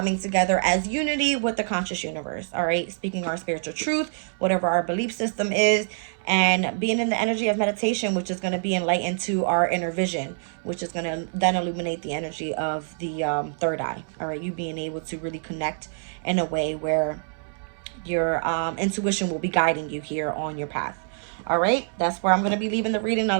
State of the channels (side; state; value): left; silent; 61 dB below the other